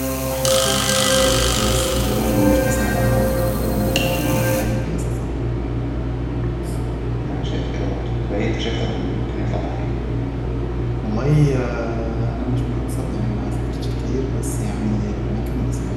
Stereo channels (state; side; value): identical; both; correlation 1.00